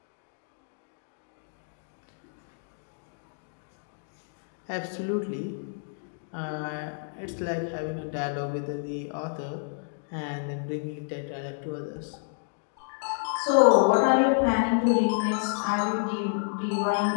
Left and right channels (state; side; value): silent; right; digital silence